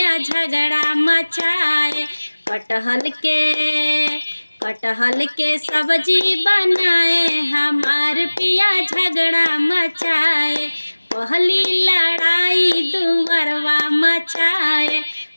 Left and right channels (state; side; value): inverted; both; correlation -1.00